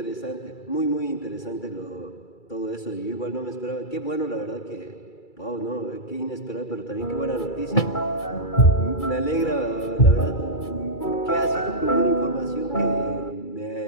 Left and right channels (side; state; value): right; late; 2.3 ms